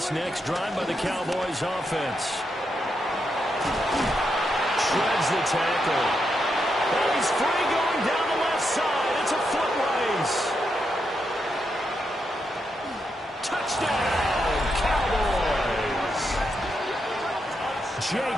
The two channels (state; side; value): normal; both; correlation 0.83